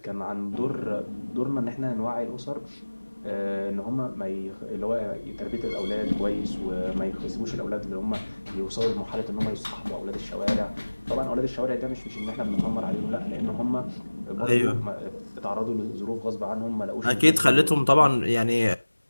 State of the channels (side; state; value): both; inverted; correlation -1.00